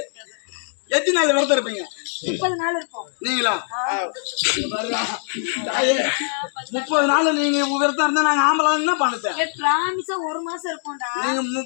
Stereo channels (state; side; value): silent; right; digital silence